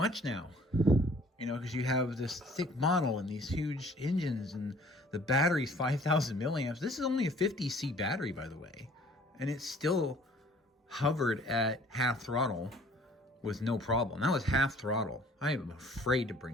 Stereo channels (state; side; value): normal; both; correlation 0.54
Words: now. You know, because you have this thick model and these huge engines, and the battery's 5,000 milliamps. This is only a 50C battery, by the way, and it still hovered at half throttle with no problem. That was half throttle. I am afraid to bring